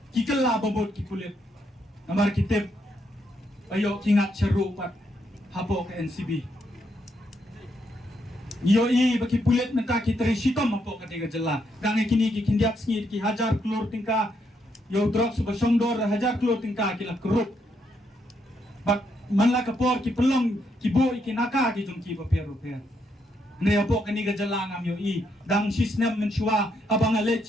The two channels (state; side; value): normal; both; correlation 0.77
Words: ki kala babot ki kulit namar kitip ayo kingat seru pat hapo ke NCB. Yo i baki pulet menta ki tresitom hapo ka tiga jela. Dange kini ki kindiak sngi ki hajar klor tingka yo drugs ba songdor hajar klor tingka ki la krup. Bak manla kapor ki pelong ki bo ki naka ki jong ki ba pero per. Ne hapo ka ni ga jela ngam yo i dang sisnem menchua abang ale